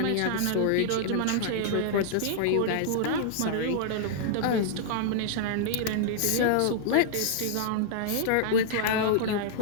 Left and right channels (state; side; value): different; both; correlation -0.01